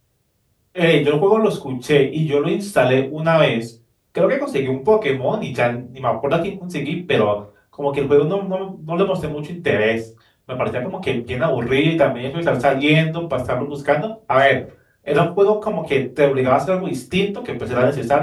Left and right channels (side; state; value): both; identical; correlation 1.00